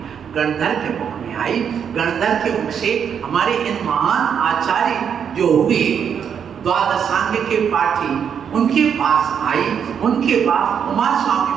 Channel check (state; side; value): quieter; left; 7.7 dB